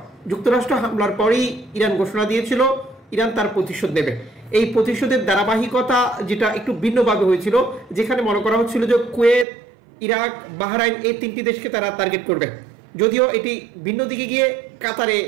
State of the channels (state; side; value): drops out; left; at 9.5 s